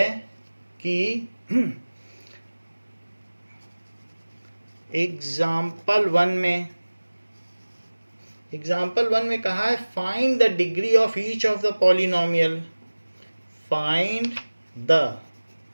कि एग्जाम्पल वन में कहा है find the degree of each of the polynomial, find the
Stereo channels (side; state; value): both; inverted; correlation -1.00